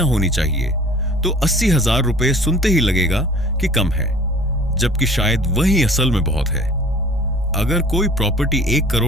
होनी चाहिए, तो 80,000 रुपये सुनते ही लगेगा कि कम है, जबकि शायद वही असल में बहुत है। अगर कोई प्रॉपर्टी 1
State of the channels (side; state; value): both; normal; correlation 0.47